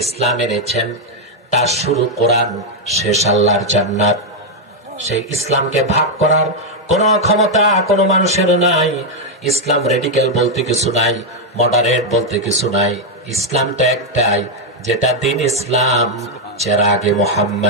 ইসলাম এনেছেন, তার শুরু কোরআন, শেষ আল্লাহর জান্নাত। সেই ইসলামকে ভাগ করার কোন ক্ষমতা কোন মানুষের নাই। ইসলাম রেডিক্যাল বলতে কিছু নাই, মডারেট বলতে কিছু নাই। ইসলামটা একটাই, যেটা দ্বীন ইসলাম, চেরাগে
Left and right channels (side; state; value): both; normal; correlation 0.00